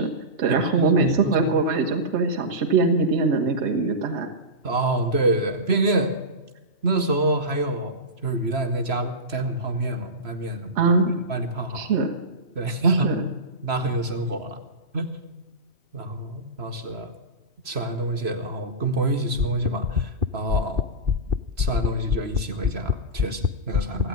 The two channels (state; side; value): late; left; 3.0 ms